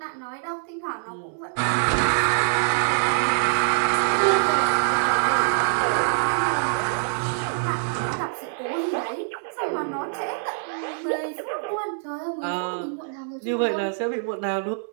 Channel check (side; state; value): left; silent; digital silence